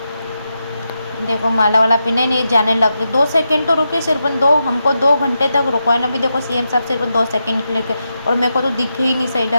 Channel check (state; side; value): inverted; both; correlation -0.87